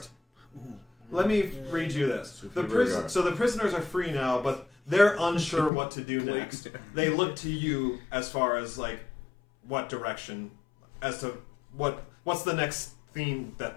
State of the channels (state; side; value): drops out; right; at 5.7 s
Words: Let me read you this. The prisoners are free now, but they're unsure what to do next. They look to you as far as like what direction, as to what's the next thing that